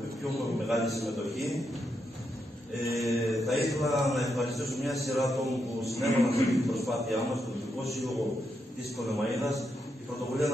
με πιο μεγάλη συμμετοχή. Θα ήθελα να ευχαριστήσω μια σειρά ατόμων που συνέβαλαν σε αυτή την προσπάθειά μας, το Δυτικό Σύλλογο της Πτολεμαΐδας. Η πρωτοβουλία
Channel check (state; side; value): normal; both; correlation 0.83